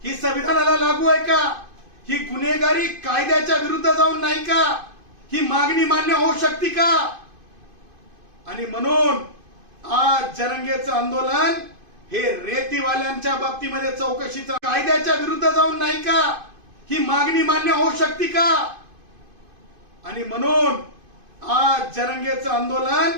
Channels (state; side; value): late; left; 2.5 ms